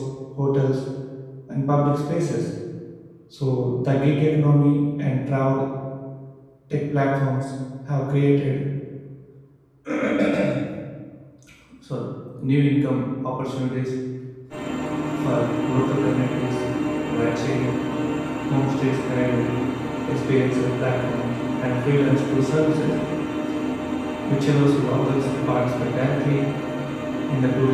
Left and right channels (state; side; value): identical; both; correlation 1.00